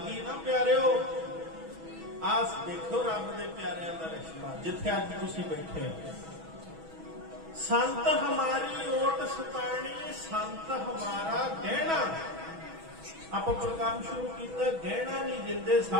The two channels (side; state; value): left; late; 6.2 ms